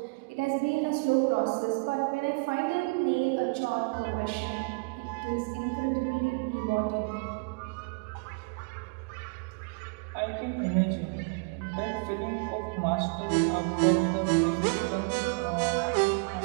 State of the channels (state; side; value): quieter; left; 33.5 dB